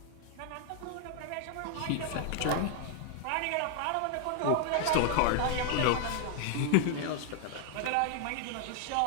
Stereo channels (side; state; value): both; different; correlation 0.00